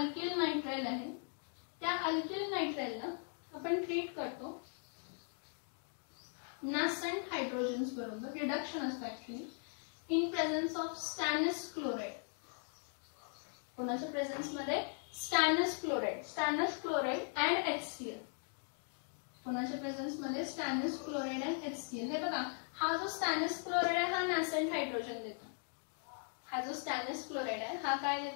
नायट्राइल आहे, त्या अल्किल नायट्राइलला आपण ट्रीट करतो नासेंट हायड्रोजन्स बरोबर. रिडक्शन असतं actually in presence of stannous chloride. कोणाच्या प्रेझेन्स मध्ये, स्टॅनस क्लोराइड अँड HCl. कोणाच्या प्रेझेन्स मध्ये, स्टॅनस क्लोराइड अँड HCl. हे बघा, हा जो स्टॅनस क्लोराइड आहे हा नासेंट हायड्रोजन देतो. हा जो स्टॅनस क्लोराइड आहे हा काय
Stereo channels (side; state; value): right; silent; 52 dB below the other